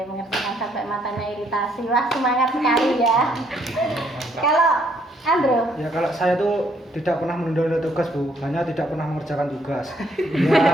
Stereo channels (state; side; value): normal; both; correlation 0.69